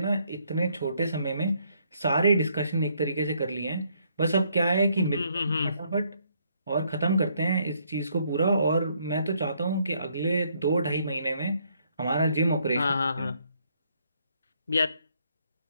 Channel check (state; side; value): inverted; both; correlation -0.70